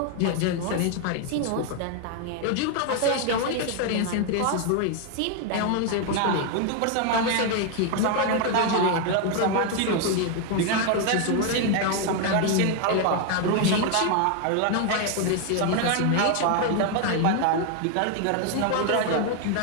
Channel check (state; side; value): different; both; correlation 0.01